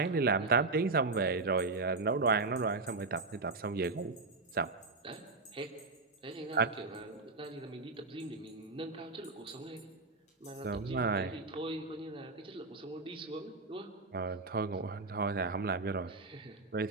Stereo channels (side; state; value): left; quieter; 3.6 dB